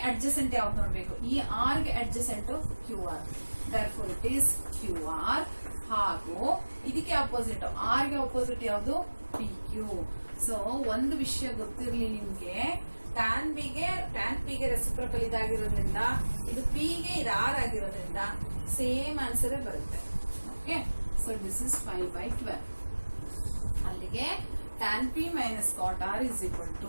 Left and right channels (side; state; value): both; inverted; correlation -1.00